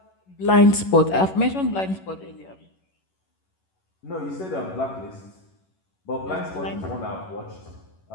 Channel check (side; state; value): right; late; 11 ms